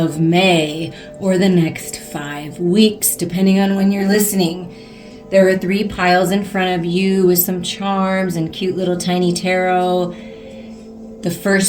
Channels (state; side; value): identical; both; correlation 1.00